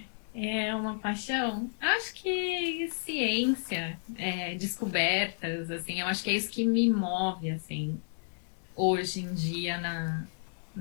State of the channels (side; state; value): right; silent; digital silence